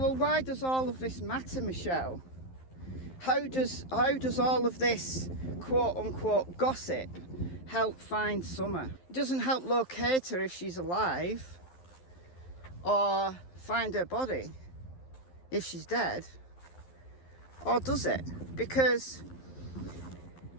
why does all of this matter, Michelle? How does all of this quote-unquote gossip help find Summer? It doesn't help locate her if she's alive, or find her body if she's dead, or does it? Because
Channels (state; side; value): late; right; 11 ms